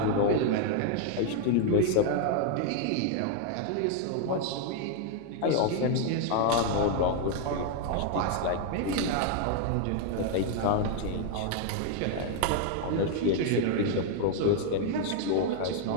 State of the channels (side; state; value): both; different; correlation 0.00